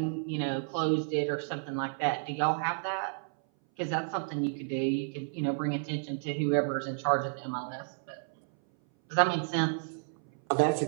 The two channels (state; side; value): silent; left; 57 dB below the other